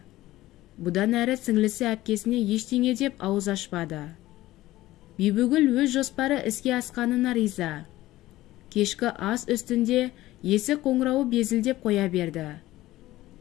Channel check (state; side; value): quieter; right; 16.4 dB